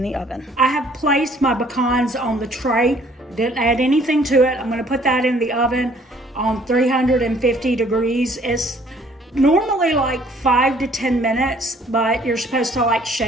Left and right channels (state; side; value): normal; both; correlation 0.59